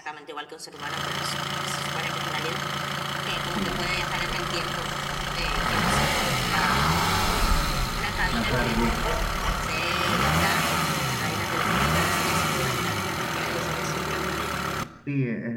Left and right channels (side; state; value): both; identical; correlation 1.00